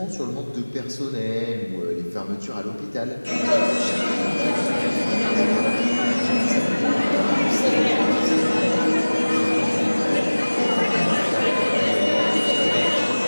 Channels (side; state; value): both; inverted; correlation -1.00